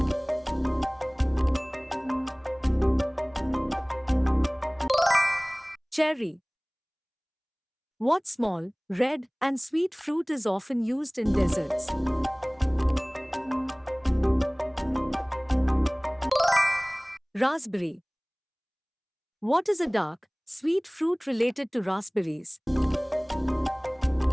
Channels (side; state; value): both; identical; correlation 1.00